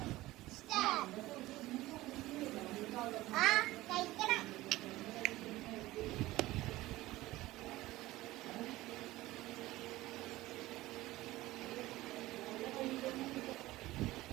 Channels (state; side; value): quieter; left; 17.7 dB